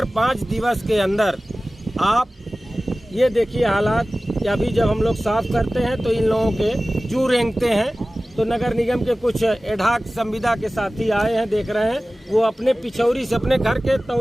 5 दिवस के अंदर आप ये देखिए हालात कि अभी जब हम लोग साफ करते हैं तो इन लोगों के जू रेंगते हैं। तो नगर निगम के कुछ एडाक संविदा के साथी आए हैं, देख रहे हैं, वो अपने पिछौरी से अपने घर के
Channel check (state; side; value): normal; both; correlation 0.97